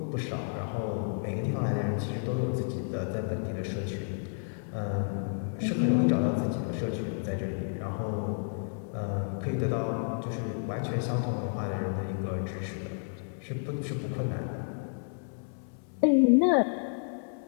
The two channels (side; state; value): right; silent; digital silence